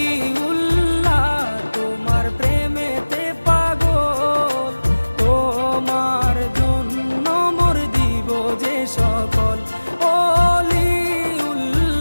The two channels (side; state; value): both; inverted; correlation -1.00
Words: তোমার প্রেমেতে পাগল, তোমার জন্য মোর দিব যে সকল।